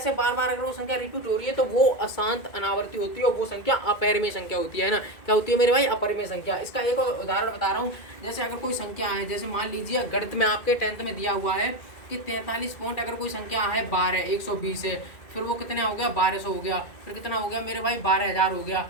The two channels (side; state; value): right; late; 2.3 ms